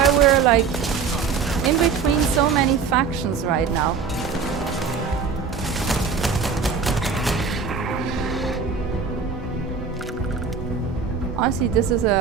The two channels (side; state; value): left; quieter; 5.7 dB